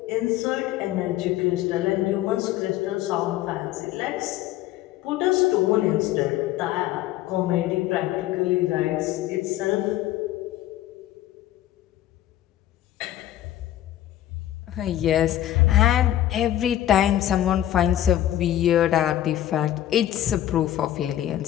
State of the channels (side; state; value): right; quieter; 13.0 dB